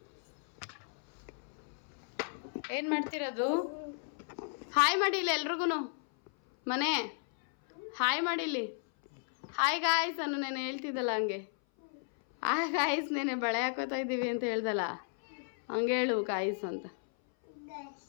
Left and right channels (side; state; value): right; silent; 55 dB below the other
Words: ಏನು ಮಾಡ್ತಿರೋದು? ಹಾಯ್ ಮಾಡಿಲ್ಲ ಎಲ್ರಿಗೂ ಮನೆ ಹಾಯ್ ಮಾಡಿಲ್ಲಿ. ಹಾಯ್ ಗಾಯ್ಸ್ ಅನ್ನು ನಾನು ಹೇಳ್ತಿದ್ದಲ್ಲ ಹಂಗೆ. ಗಾಯ್ಸ್ ನೆನೆ ಬಳೆ ಹಾಕೋತಾ ಇದ್ದೀವಿ ಅಂತ ಹೇಳ್ದಲ್ಲ ಹಂಗೆ ಹೇಳು ಗಾಯ್ಸ್ ಅಂತ.